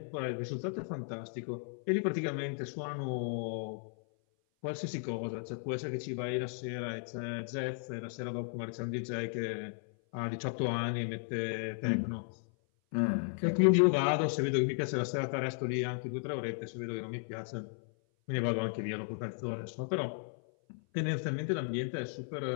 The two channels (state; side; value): silent; right; 55 dB below the other